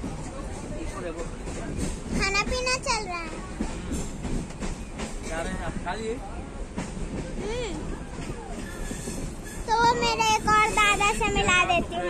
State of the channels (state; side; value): identical; both; correlation 1.00